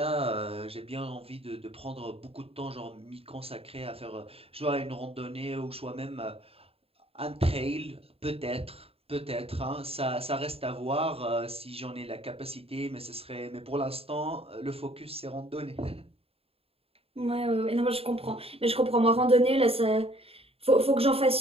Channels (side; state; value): left; late; 0.28 ms